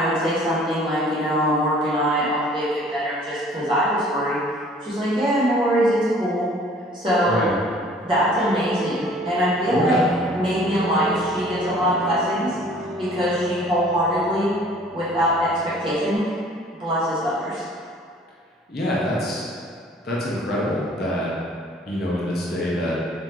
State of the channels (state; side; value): normal; both; correlation 0.53